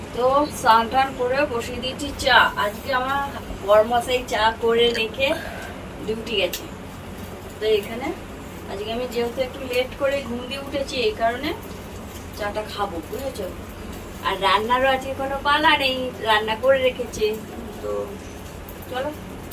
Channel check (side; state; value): both; identical; correlation 1.00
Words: তো স্নান টান করে বসিয়ে দিয়েছি চা। আজকে আমার বরমশাই চা করে রেখে ডিউটি গেছে, তো এখানে আজকে আমি যেহেতু একটু লেট করে ঘুম দিয়ে উঠেছি, এই কারণে চাটা খাবো, বুঝেছো। আর রান্নারও আজকে কোনো পালা নেই, রান্না করে রেখেছে। তো চলো